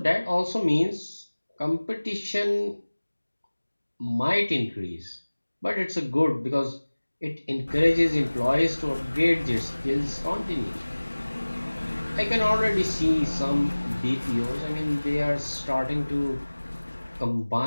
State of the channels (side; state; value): both; inverted; correlation -1.00